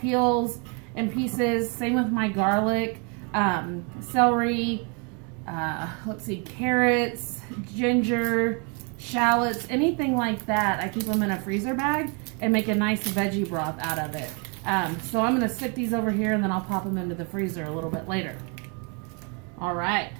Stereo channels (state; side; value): quieter; left; 34.9 dB